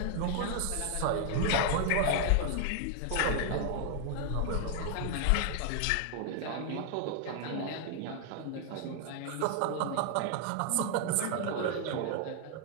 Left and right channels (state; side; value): different; both; correlation 0.00